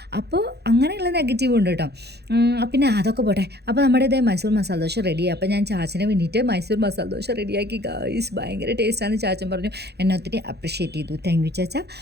അപ്പോൾ അങ്ങനെയുള്ള നെഗറ്റീവ് ഉണ്ട് കേട്ടോ. പിന്നെ അതൊക്കെ പോട്ടെ. അപ്പോൾ നമ്മുടെ ഇതേ മൈസൂർ മസാല ദോശ റെഡിയായി. അപ്പോൾ ഞാൻ ചാച്ചന് വേണ്ടിയിട്ട് മൈസൂർ മസാല ദോശ റെഡിയാക്കി. ഗൈസ്, ഭയങ്കര ടേസ്റ്റാണെന്ന് ചാച്ചൻ പറഞ്ഞു. എന്നെ ഒത്തിരി അപ്രിഷ്യേറ്റ് ചെയ്തു. താങ്ക് യു ചാച്ച.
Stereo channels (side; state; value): left; late; 0.48 ms